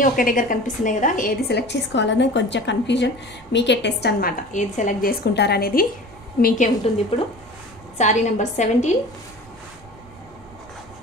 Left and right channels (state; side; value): normal; both; correlation 0.39